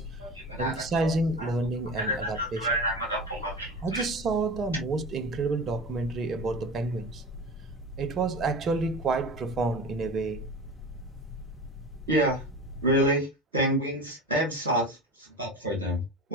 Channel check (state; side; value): normal; both; correlation 0.31